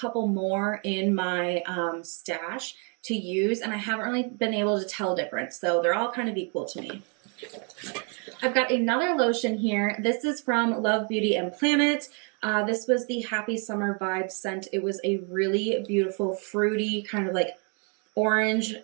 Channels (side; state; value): left; quieter; 37.8 dB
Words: more in my stash to use, and I haven't really been able to tell difference. So they're all kind of equal to me. I've got another lotion here. This is from Love Beauty and Planet. This was the Happy Summer Vibe scent. It was a really beautiful, fruity, kind of like orange